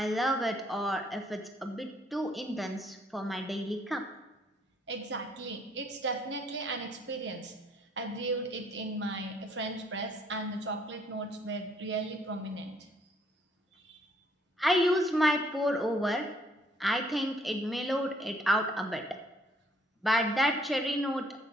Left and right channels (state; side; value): normal; both; correlation 0.65